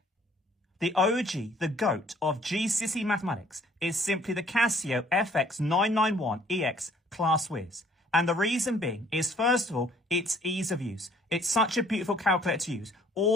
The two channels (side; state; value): both; normal; correlation 0.59